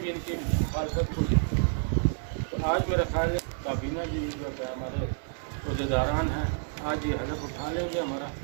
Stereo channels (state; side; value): silent; left; 58 dB below the other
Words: इनकी मुखालफत को की। तो आज मेरा ख्याल है काबीना भी जो है हमारे अहदेदारान हैं, आज ये हलफ उठा लेंगे हमारा,